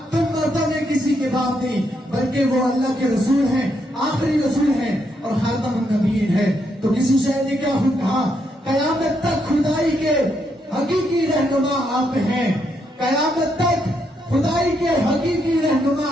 تم مرتبہ کسی کے باپ نہیں بلکہ وہ اللہ کے رسول ہیں، آخری رسول ہیں اور خاتم النبیین ہے۔ تو کسی شاعر نے کیا کہا، قیامت تک خدائی کے حقیقی رہنما آپ ہیں، قیامت تک خدائی کے حقیقی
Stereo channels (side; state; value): both; normal; correlation 0.78